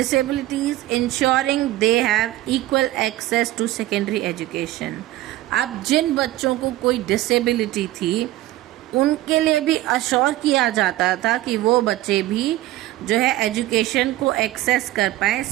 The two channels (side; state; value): left; quieter; 15.9 dB